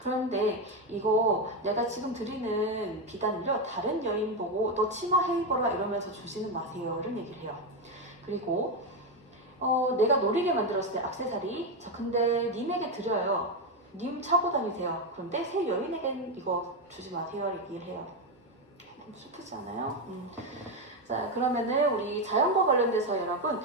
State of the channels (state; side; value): normal; both; correlation 0.09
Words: 이거 내가 지금 드리는 비단을요, 다른 여인 보고 너 치마 해입어라 이러면서 주지는 마세요, 이런 얘기를 해요. 그리고 내가 노리게 만들었을 때 액세서리, 자, 근데 님에게 드려요. 님 차고 다니세요. 그런데 새 여인에겐 이거 주지 마세요, 얘기를 해요. 좀 슬프지 않아요? 자, 그러면은 우리 자연과 관련돼서 여러분